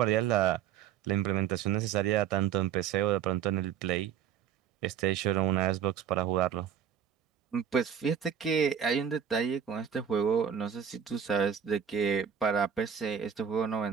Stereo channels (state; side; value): quieter; left; 8.3 dB